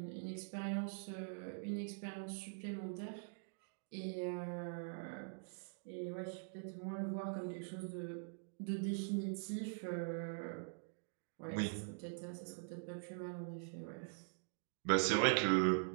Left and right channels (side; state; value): left; silent; digital silence